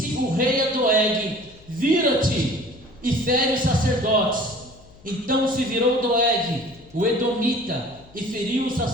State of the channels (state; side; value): noise; left; hum, 25 dB below the sound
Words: o rei a Doeg: vira-te e fere os sacerdotes. Então se virou Doeg, o Edomita, e feriu os